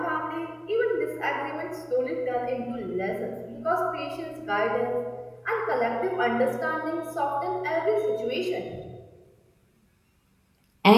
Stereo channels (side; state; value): both; identical; correlation 1.00